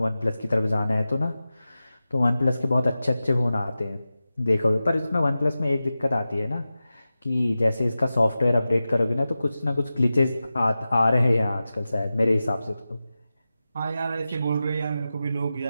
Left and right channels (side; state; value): both; inverted; correlation -0.94